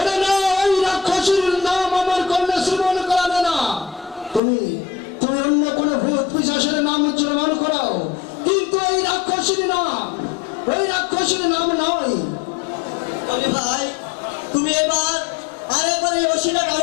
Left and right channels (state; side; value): drops out; right; at 4.4 s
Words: না, ওই রাক্ষসীর নাম আমার কর্ণে শ্রবণ করাবে না। তুমি তুমি অন্য কোনো ভূত পিশাচের নাম উচ্চারণ করাও, কিন্তু ওই রাক্ষসীর নাম নয়। বলি ভাই, তুমি এবার আরেকবার এই ওষিটা